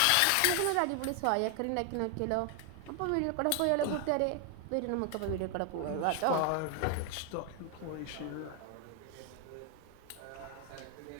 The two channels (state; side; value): different; both; correlation 0.00